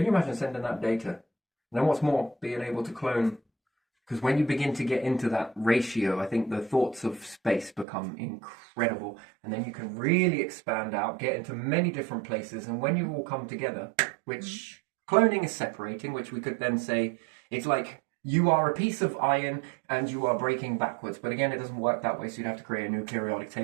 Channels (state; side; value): drops out; left; at 7.9 s